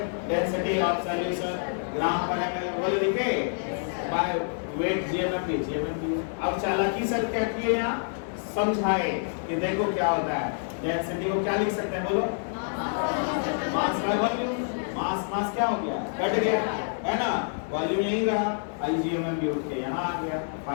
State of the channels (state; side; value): silent; right; digital silence